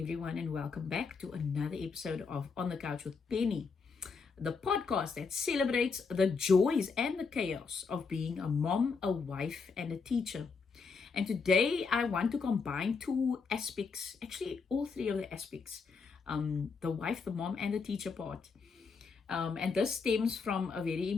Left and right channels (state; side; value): quieter; right; 5.0 dB